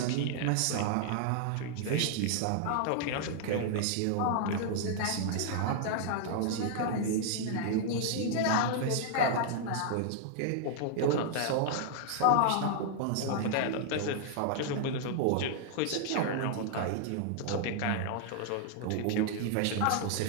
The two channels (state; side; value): different; both; correlation -0.01